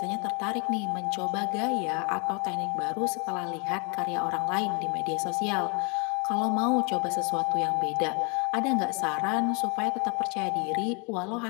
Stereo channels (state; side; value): quieter; right; 34.1 dB